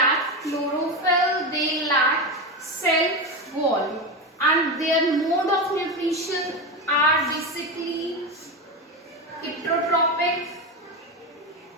chlorophyll, they lack cell wall, and their mode of nutrition are basically heterotrophic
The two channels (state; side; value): normal; both; correlation 0.17